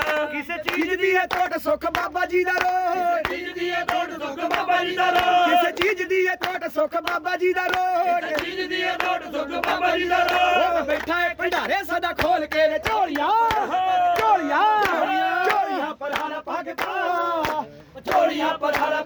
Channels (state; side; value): identical; both; correlation 1.00